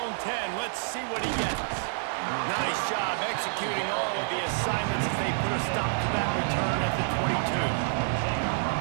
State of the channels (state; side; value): silent; left; digital silence